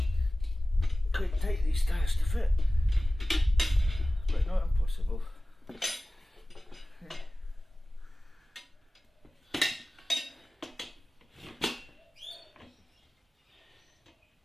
Quite tight these tyres to fit, but not impossible.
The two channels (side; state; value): both; normal; correlation 0.97